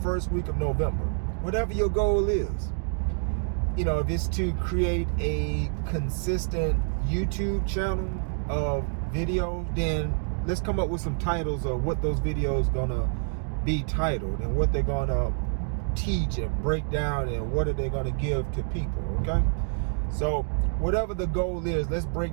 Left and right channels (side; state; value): left; silent; digital silence